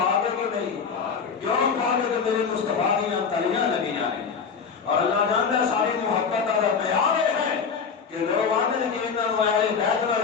ہے کہ نہیں؟ کیوں پاک ہے کہ میرے مصطفیٰ دیاں تلیاں لگیاں ہیں، اور اللہ جانتا ہے ساری محبت کا پیار ہے کہ لوگ آنے لگے انہوں اہل بیت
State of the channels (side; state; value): right; quieter; 6.0 dB